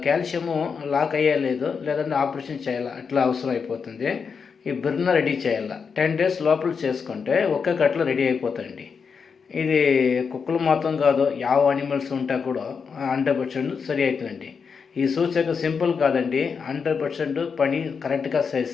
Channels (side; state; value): right; quieter; 5.8 dB